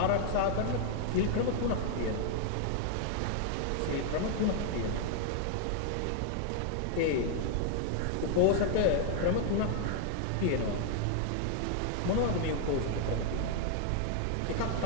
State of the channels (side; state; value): both; different; correlation 0.00